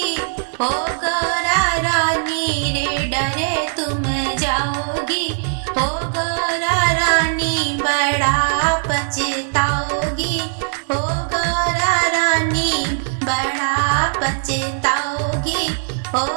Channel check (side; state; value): left; silent; digital silence